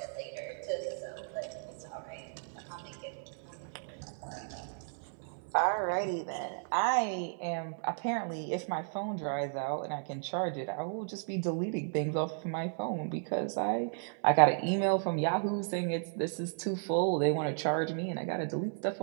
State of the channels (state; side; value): silent; left; 55 dB below the other